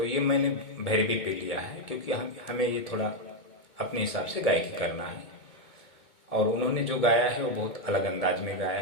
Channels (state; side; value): late; right; 2.2 ms